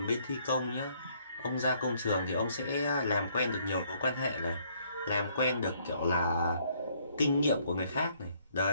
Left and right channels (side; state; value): both; inverted; correlation -0.66